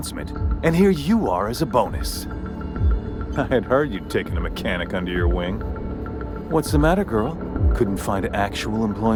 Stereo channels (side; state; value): both; identical; correlation 1.00